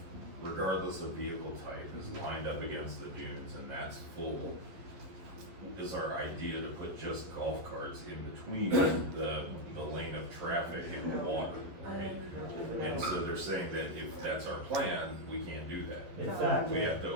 regardless of vehicle type is lined up against the dunes and that's full, is our idea to put just golf carts in between the lane of traffic and the water, right? And so they're saying that if that's our plan, we can't do that. Exactly. We have to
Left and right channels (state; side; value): late; left; 11 ms